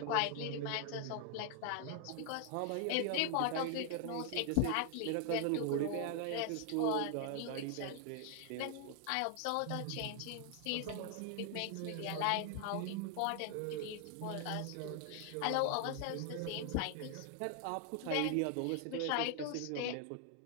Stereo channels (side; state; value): both; different; correlation 0.00